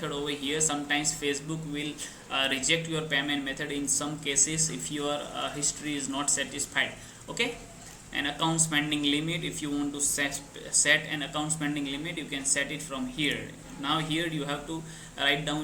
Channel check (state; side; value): identical; both; correlation 1.00